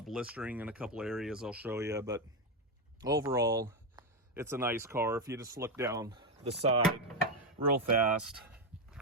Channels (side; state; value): both; normal; correlation 0.08